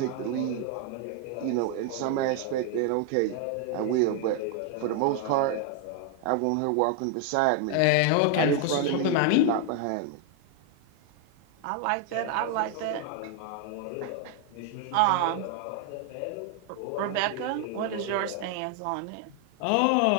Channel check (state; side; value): different; both; correlation 0.00